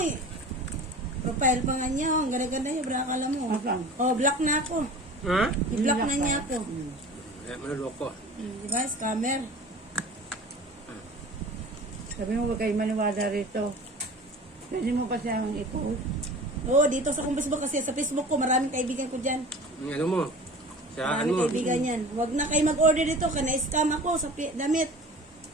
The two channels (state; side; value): normal; both; correlation 0.39